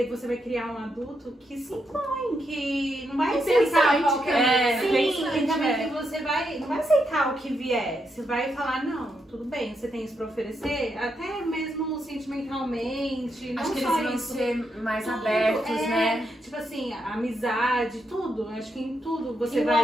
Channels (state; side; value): normal; both; correlation 0.82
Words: você vai criar um adulto que se impõe, que não vai aceitar Pensante, qualquer. Sim, Sim, também é. que você vai. Não vai aceitar o que vier. Você vai falar, não, tudo bem, você tem isso pra oferecer, até mesmo sentimentalmente. Não Acho que só eles vão isso. ser mais Tudo, abertos, é, né? Tipo assim, amizade, tudo. Acho que em tudo você